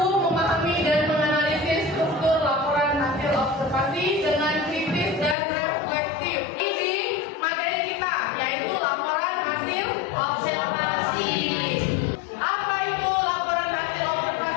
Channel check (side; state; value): right; drops out; at 5.4 s